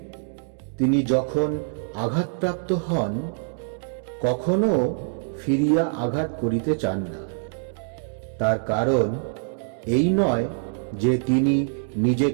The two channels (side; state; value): left; silent; digital silence